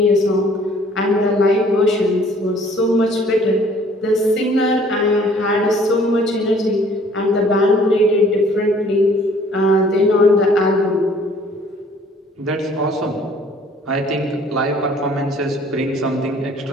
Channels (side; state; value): both; normal; correlation 0.56